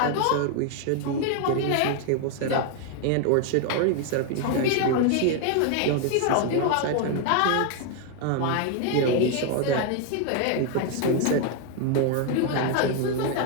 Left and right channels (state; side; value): different; both; correlation 0.01